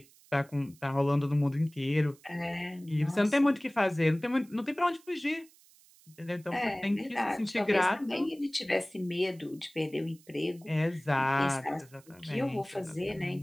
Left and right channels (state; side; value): noise; right; hiss, 27 dB below the sound